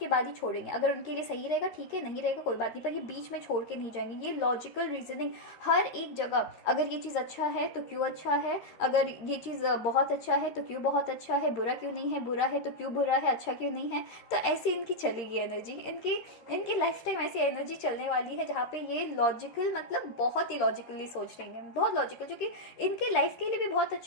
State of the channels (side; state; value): right; late; 13 ms